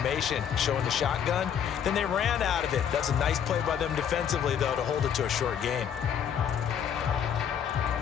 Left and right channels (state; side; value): quieter; right; 8.4 dB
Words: showing the shotgun. Then they ran out of it. That's a nice play by them defensively, though, to hold it to a short gain.